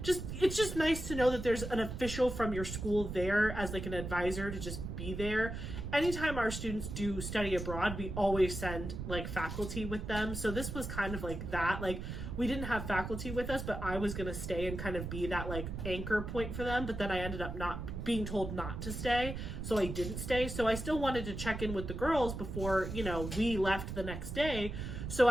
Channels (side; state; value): right; noise; rumble, 6 dB below the sound